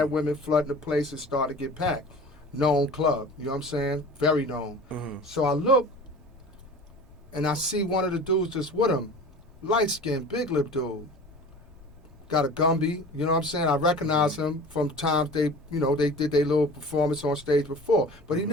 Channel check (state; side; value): noise; left; rumble, 24 dB below the sound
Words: women flooding the place and started to get packed. Known club, you know what I'm saying? Very known. So I look, and I see one of the dudes that's with him, light-skinned, big lip dude. Got a Gumby, you know what I'm saying? I recognize him from times they did their little performance on stage before. But